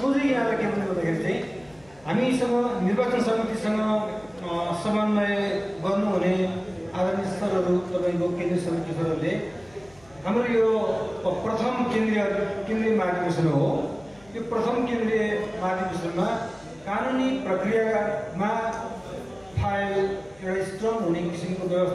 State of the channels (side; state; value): left; noise; hum, 27 dB below the sound